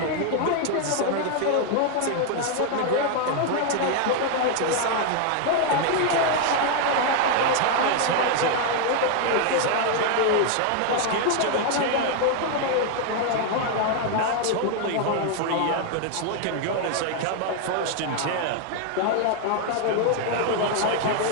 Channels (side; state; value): both; different; correlation 0.00